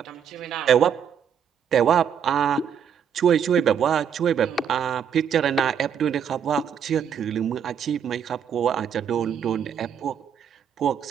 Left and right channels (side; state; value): left; quieter; 7.9 dB